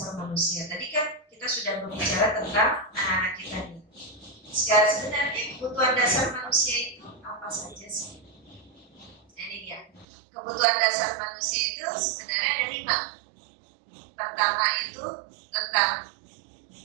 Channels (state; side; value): drops out; left; at 10.1 s